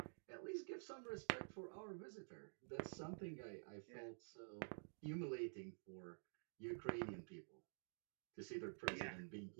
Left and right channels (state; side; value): silent; left; digital silence